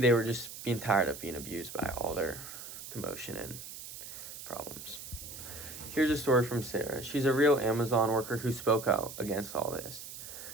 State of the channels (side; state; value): right; noise; hiss, 11 dB below the sound